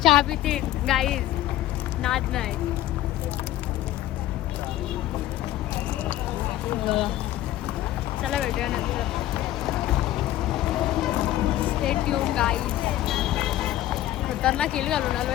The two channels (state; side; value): quieter; right; 14.2 dB